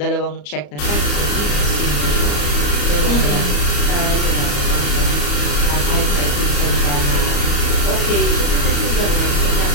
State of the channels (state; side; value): late; right; 34 ms